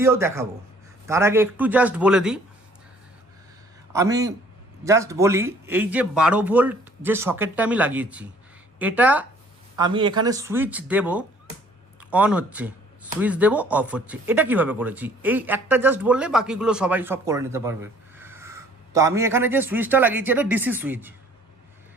দেখাবো। তার আগে একটু জাস্ট বলে দিই, এই যে 12 ভোল্ট যে সকেটটা আমি লাগিয়েছি, এটা আমি এখানে সুইচ দেব, অন হচ্ছে, সুইচ দেব, অফ হচ্ছে। এটা কিভাবে করেছি এই একটা জাস্ট বললে বাকিগুলো সবাই সব করে নিতে পারবে। তো আমি এখানে যে সুইচটা লাগিয়েছি এটা ডিসি সুইচ।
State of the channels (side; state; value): both; normal; correlation 0.57